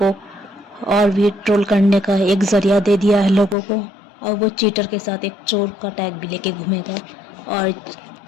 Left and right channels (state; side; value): drops out; right; at 3.6 s